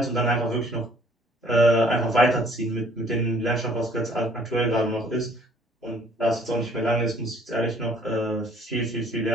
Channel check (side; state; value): both; normal; correlation 0.58